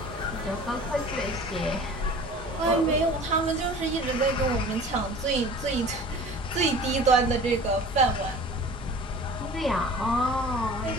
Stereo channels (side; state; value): both; normal; correlation 0.43